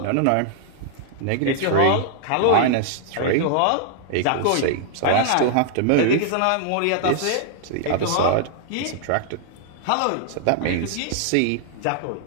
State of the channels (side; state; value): both; different; correlation -0.01